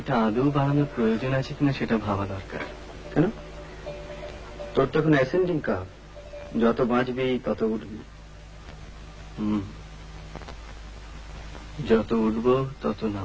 আদৌ বাড়ানোর প্রয়োজন আছে কিনা সেটা ভাবা দরকার। কেন? তোর তখন অ্যাসেন্ডিং কার্ভ, যত বাঁচবি তত উঠবি। যত উঠবো তত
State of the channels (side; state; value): both; identical; correlation 1.00